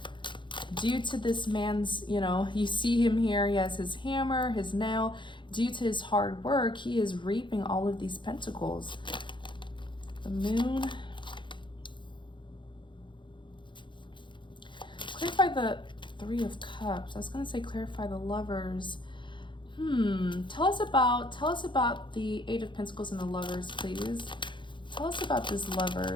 Due to this man's, you see him here, he has his hammer, his nail. Due to his hard work, he is reaping all of these pentacles. The Moon. Clarify the Three of Cups. I was going to say clarify the Lovers. Tell us about the Eight of Pentacles and the Lovers, please. Tell us about this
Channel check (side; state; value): right; late; 0.23 ms